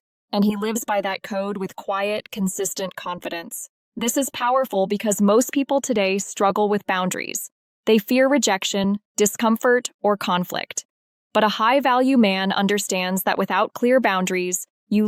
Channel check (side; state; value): both; identical; correlation 1.00